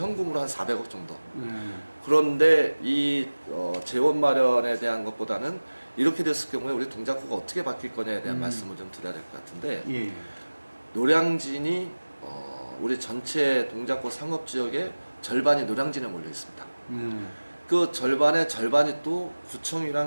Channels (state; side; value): inverted; both; correlation -1.00